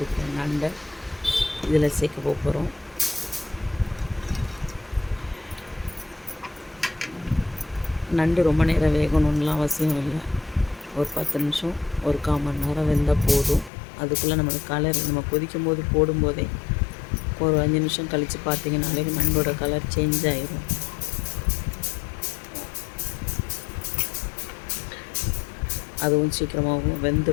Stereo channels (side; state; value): right; drops out; at 13.7 s